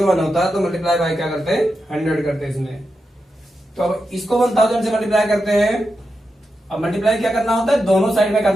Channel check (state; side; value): normal; both; correlation 0.88